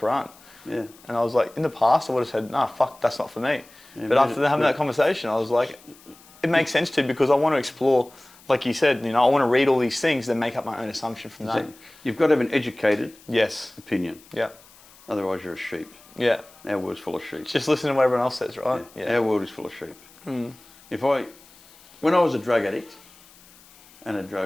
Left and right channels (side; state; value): left; noise; hiss, 25 dB below the sound